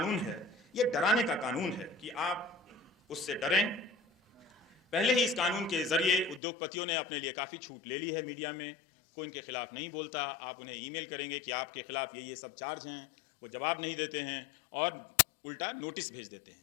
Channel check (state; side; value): drops out; right; at 6.4 s